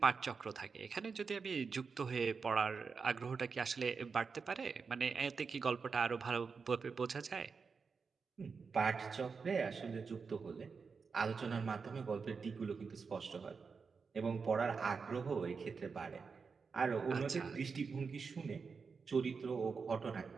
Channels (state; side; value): quieter; left; 5.2 dB